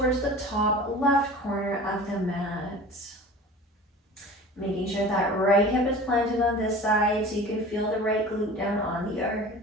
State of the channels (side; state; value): both; normal; correlation 0.39